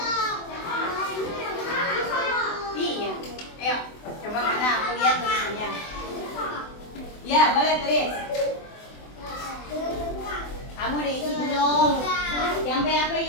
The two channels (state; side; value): late; right; 24 ms